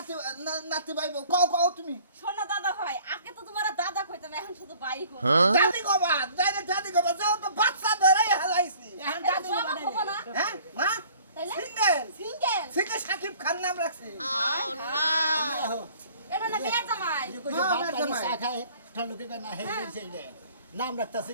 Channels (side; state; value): both; inverted; correlation -0.52